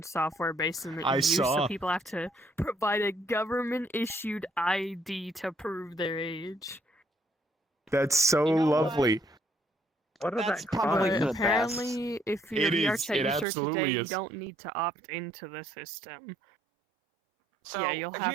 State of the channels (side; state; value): left; drops out; at 13.5 s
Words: software based in the EU, so people have to provide a government-issued ID to prove their age. That's so lovely. What is that? Probably apparently, if you're VR chat user today, you don't need to opt into the system. So, yeah, you'll have